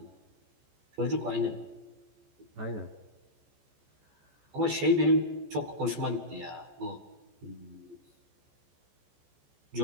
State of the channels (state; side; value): late; left; 14 ms